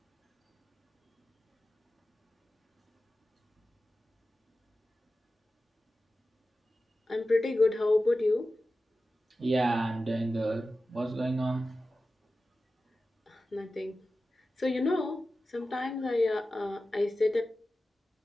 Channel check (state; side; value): normal; both; correlation 0.94